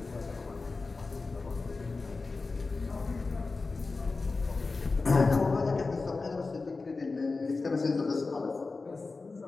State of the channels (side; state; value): right; quieter; 3.9 dB